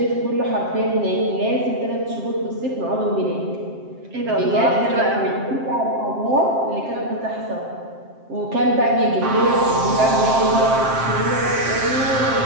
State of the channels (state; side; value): late; left; 7.6 ms